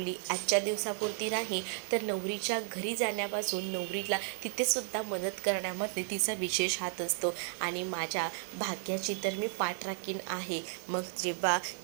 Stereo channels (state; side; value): silent; left; 55 dB below the other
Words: आजच्या दिवसापुरती नाही तर नवरीच्या घरी जाण्यापासून नवरीला तिथेसुद्धा मदत करण्यामध्ये तिचा विशेष हात असतो आणि माझ्या भाग्याची तर मी पाठ राखीन आहे. मग जेव्हा